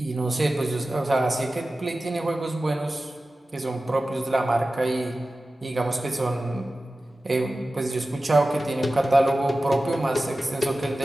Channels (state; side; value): normal; both; correlation 0.95